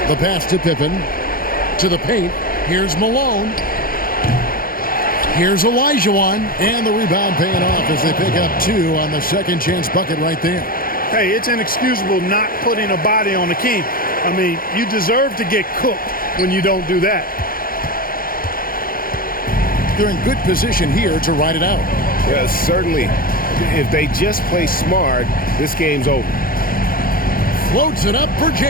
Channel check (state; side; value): late; right; 0.42 ms